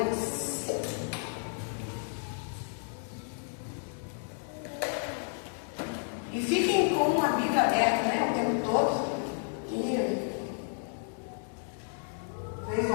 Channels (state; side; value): silent; right; 57 dB below the other